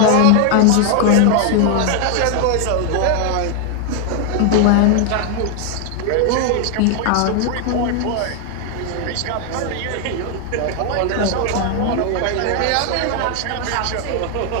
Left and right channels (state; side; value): different; both; correlation 0.00